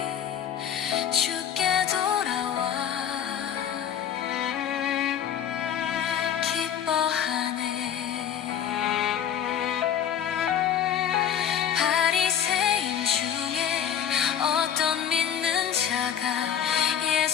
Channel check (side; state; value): right; quieter; 9.2 dB